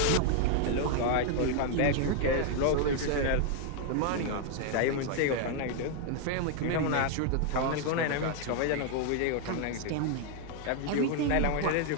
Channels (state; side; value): different; both; correlation 0.00